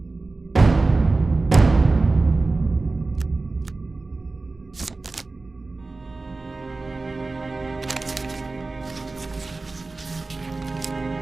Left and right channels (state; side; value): quieter; left; 3.5 dB